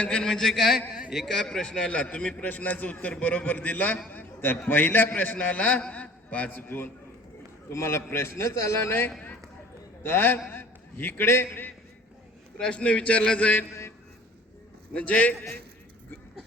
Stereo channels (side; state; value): both; normal; correlation 0.48